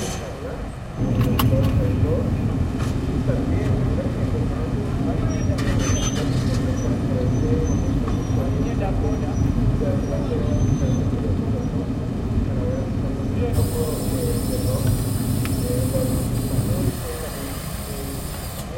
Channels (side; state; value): both; identical; correlation 1.00